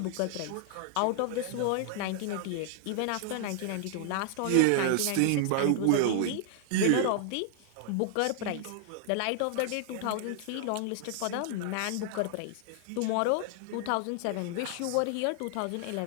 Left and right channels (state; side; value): different; both; correlation 0.00